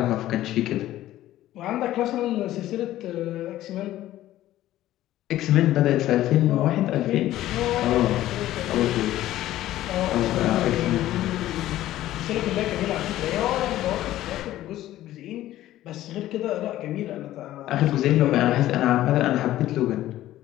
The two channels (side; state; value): right; quieter; 14.3 dB